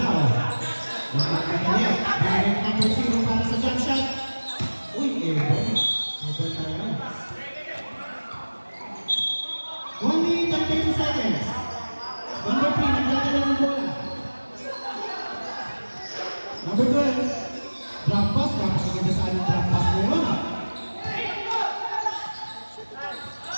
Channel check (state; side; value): inverted; both; correlation -1.00